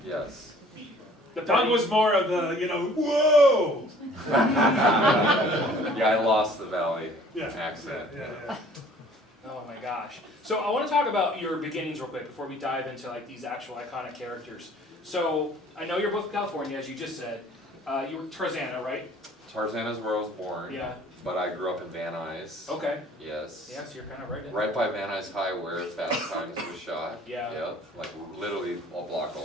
Yes. Doug was more of the, whoa. Yeah, I lost the Valley accent. Yeah. Oh my gosh. So I want to talk about your beginnings real quick before we dive into like these actual iconic characters. So I know you're both from California, as you just said. You were Tarzana, right? Tarzana is where I was born. Yeah. But I grew up in Van Nuys. Okay. Yes. Yeah, so you're kind of right in Right by Van Nuys High where Fast Times was shot. Yeah. Yep. Like literally a block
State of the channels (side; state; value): both; normal; correlation 0.53